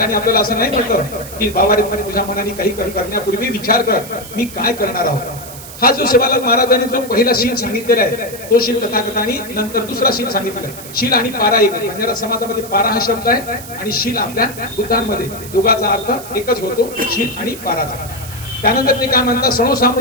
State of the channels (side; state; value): right; noise; hiss, 14 dB below the sound